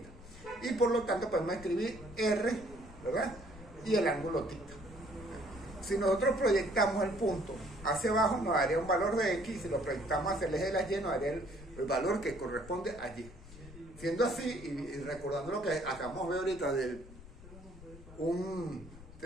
Y por lo tanto podemos escribir R, ¿verdad? Y el ángulo tita. Si nosotros proyectamos el punto hacia abajo nos daría un valor de X, si lo proyectamos hacia el eje de la Y nos daría el valor que corresponde a Y. Siendo así, y recordando lo que acabamos de ver ahorita de un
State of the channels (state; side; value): noise; left; rumble, 17 dB below the sound